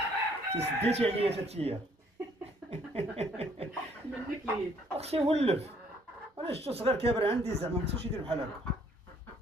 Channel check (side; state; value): both; normal; correlation 0.63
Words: سديتي عليا تاتيا. منك ليد. اختي ولف، انا شفتو صغير كابر عندي، زعما ما خصوش يدير بحال هكا.